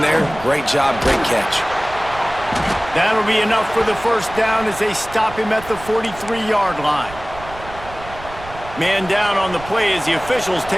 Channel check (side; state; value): right; noise; rumble, 16 dB below the sound